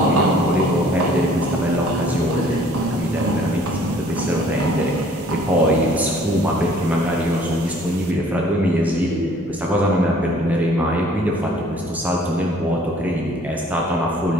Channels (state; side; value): noise; right; hum, 29 dB below the sound